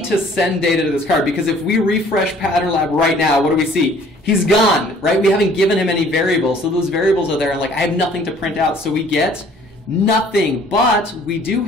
to send data to this card, because if we refresh Pattern Lab right now, what do we see? He's gone, right? We haven't given him any variables, so those variables are there, and like I have nothing to print out, so we get nothing. But we do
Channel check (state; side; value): normal; both; correlation 0.55